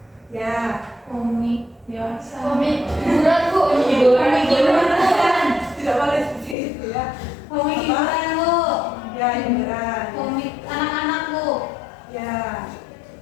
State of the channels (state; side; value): drops out; right; at 6.6 s